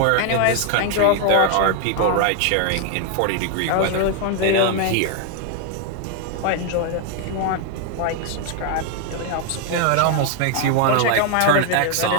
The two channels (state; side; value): different; both; correlation 0.00